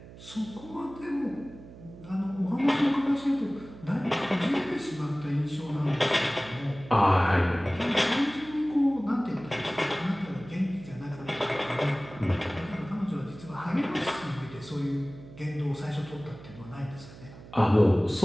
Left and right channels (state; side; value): noise; right; hum, 17 dB below the sound